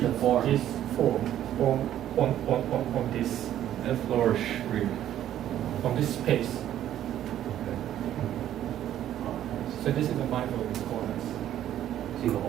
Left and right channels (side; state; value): left; quieter; 11.6 dB